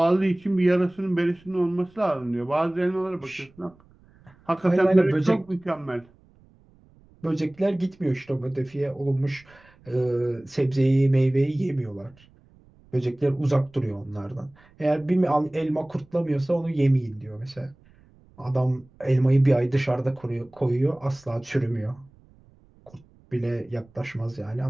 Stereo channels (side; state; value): right; noise; rumble, 28 dB below the sound